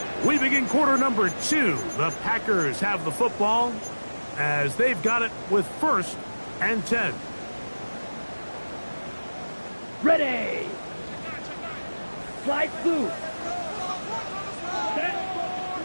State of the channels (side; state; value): both; inverted; correlation -1.00